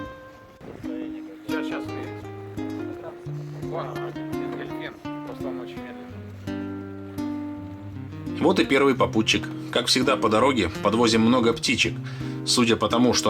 Сейчас увидите. Вон, дельфин, просто он очень медленный. Вот и первый попутчик. Как всегда по дороге подвозим много птичек. Судя по тому, что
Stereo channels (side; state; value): both; identical; correlation 1.00